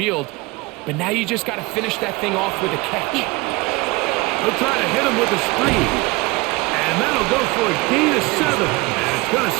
But now you just got to finish that thing off with a catch. They'll try to hit him with a screen. And that'll go for a gain of 7. And it's going to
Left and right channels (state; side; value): quieter; left; 23.5 dB